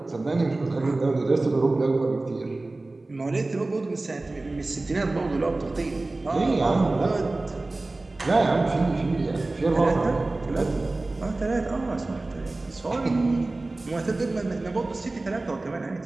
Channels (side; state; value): left; quieter; 3.1 dB